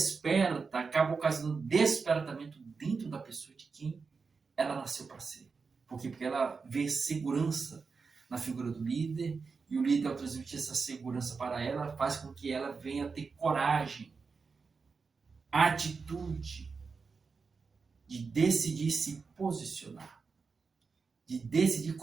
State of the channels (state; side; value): quieter; left; 4.9 dB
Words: acaba ocasionando despertamento dentro da pessoa de quem ela nasceu para ser. Por quê? Porque ela vê segurança na figura do líder, e o líder, ao transmitir essa segurança para ela, faz com que ela venha ter coragem, atitude de decidir se posicionar, de decidir